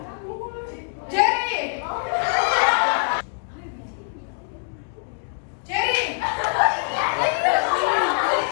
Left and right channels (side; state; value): right; silent; digital silence